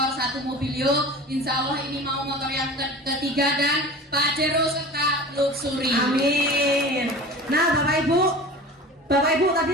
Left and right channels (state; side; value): normal; both; correlation 0.37